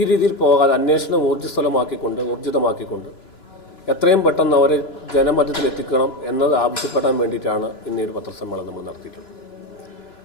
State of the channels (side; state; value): right; late; 2.9 ms